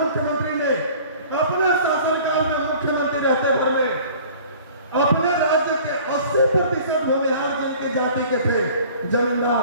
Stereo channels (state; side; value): inverted; both; correlation -0.48